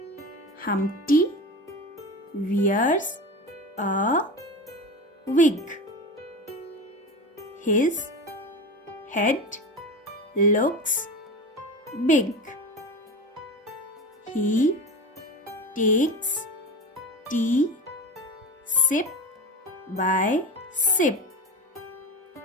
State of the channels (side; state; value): both; normal; correlation 0.27